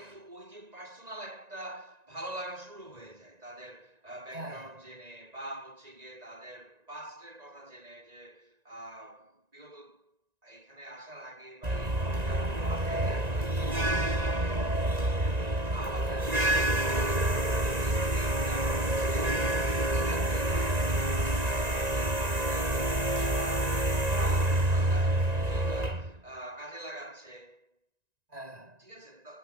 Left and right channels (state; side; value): late; left; 1.9 ms